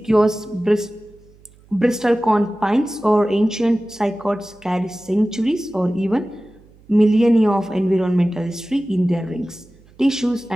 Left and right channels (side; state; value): right; noise; hum, 27 dB below the sound